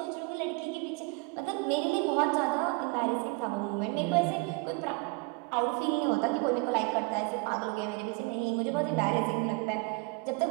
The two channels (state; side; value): quieter; left; 28.1 dB